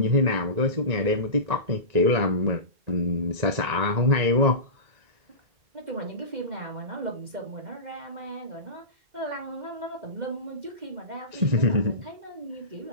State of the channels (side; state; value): left; late; 1.9 ms